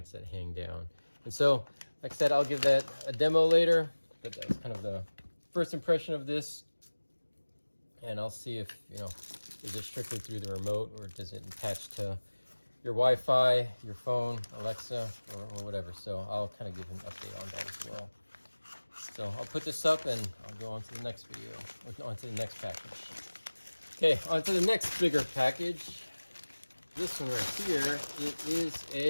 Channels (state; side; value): inverted; both; correlation -1.00